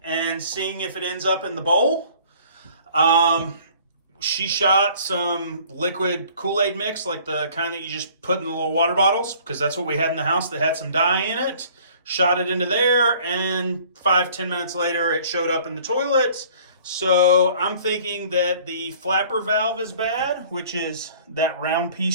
seeing if it ends up in the bowl. She shot some liquid Kool-Aid mix, like the kind that you just put in the little water bottles, because that's what we had in the house that had some dye in it. Shot it into there, and 5-10 minutes later, it showed up in the toilet. So I'm thinking that the flapper valve is bad, which is that round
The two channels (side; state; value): both; inverted; correlation -0.53